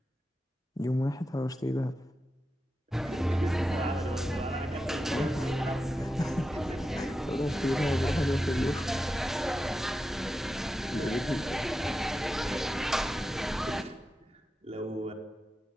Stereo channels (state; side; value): normal; both; correlation 0.91